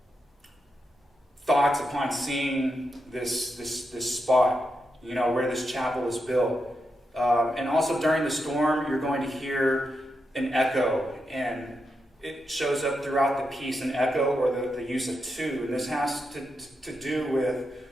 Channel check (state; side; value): normal; both; correlation 0.85